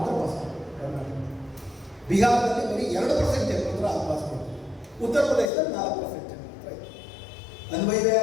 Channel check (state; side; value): drops out; right; at 5.5 s